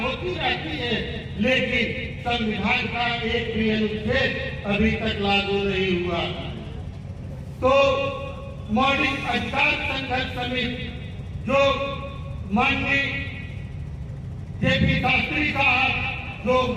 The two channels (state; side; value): identical; both; correlation 1.00